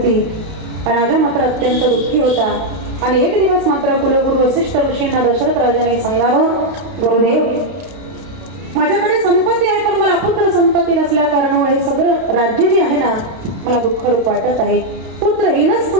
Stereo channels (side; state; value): left; late; 32 ms